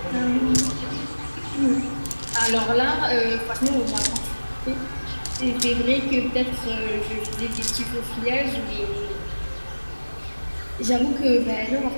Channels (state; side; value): inverted; both; correlation -1.00